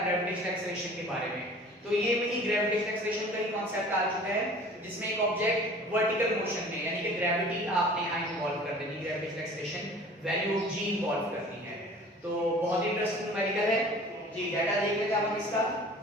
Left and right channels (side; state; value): both; normal; correlation 0.46